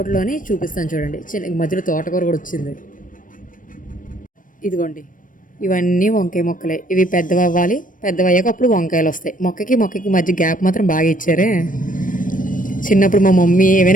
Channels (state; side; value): late; right; 0.39 ms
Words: చూపిస్తాను చూడండి, చిన్న మధ్యలో తోటకూర కూడా వచ్చింది. ఇదిగోండి, ఇవన్నీ వంకాయ మొక్కలే. ఇవి పెద్దవి అవ్వాలి, పెద్దవి అయ్యాక అప్పుడు వంకాయలు వస్తాయి. మొక్కకి మధ్య గ్యాప్ మాత్రం బాగా ఇచ్చారే. చిన్నప్పుడు మా మమ్మీ